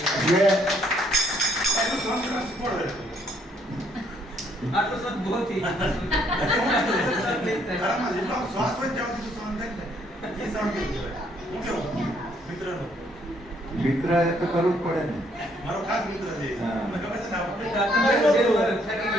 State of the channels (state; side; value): normal; both; correlation 0.67